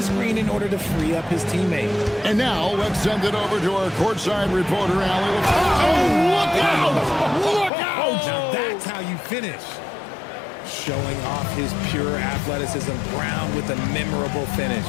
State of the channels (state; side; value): drops out; right; at 7.7 s